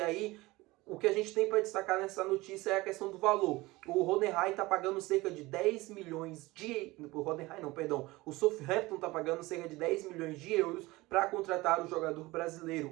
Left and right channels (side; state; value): left; quieter; 20.7 dB